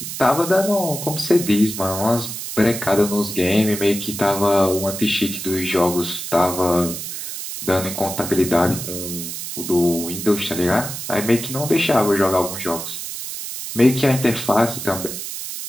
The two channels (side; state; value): right; noise; hiss, 7 dB below the sound